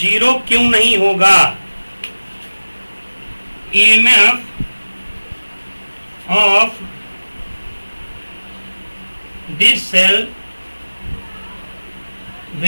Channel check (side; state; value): both; inverted; correlation -1.00